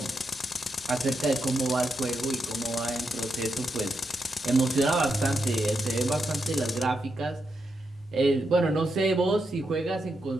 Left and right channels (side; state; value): both; normal; correlation 0.84